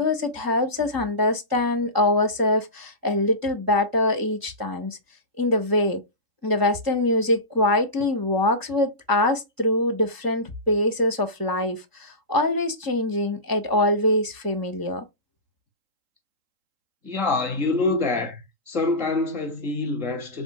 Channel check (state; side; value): late; left; 3.8 ms